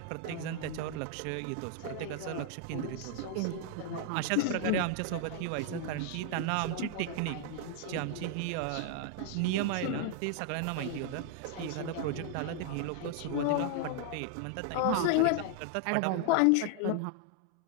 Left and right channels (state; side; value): different; both; correlation 0.00